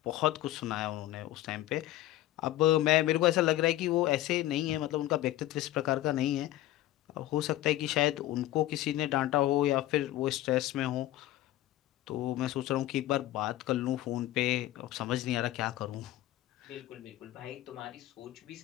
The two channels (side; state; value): right; quieter; 15.1 dB